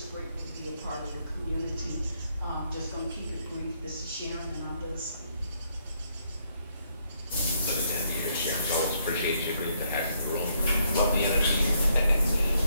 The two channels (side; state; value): both; inverted; correlation -0.73